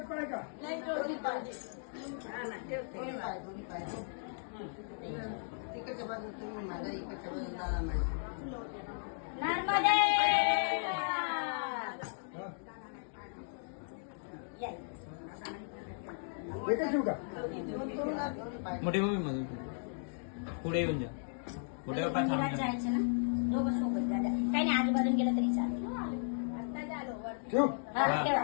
पाय का नाही दोन्ही पाय तिकडच्या बाजून तुम्ही माझ्या इकडच्या बाजून दादा नर्मदे एकच येऊ का मोठी मम्मी मधून पुढे येऊन जा पुढे मंदिरात जायचं ना दोघं सोबत दादा काही नाही आजूबाजून गेलं तरी चालेल ठेव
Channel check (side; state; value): right; silent; digital silence